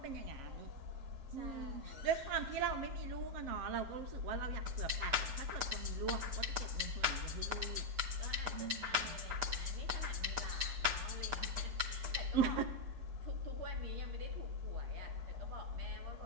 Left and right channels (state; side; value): late; left; 7.6 ms